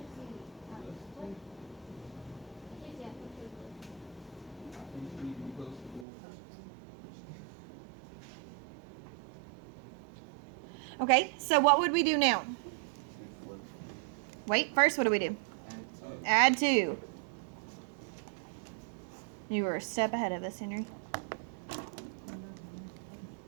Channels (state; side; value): drops out; left; at 6.1 s